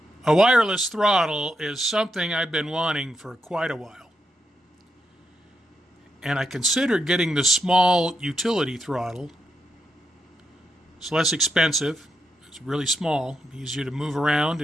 A wireless throttle is something I've been wanting for quite a while. And I considered getting the small utility throttle. It's less expensive, it's really small, easier to move around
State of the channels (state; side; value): normal; both; correlation 0.82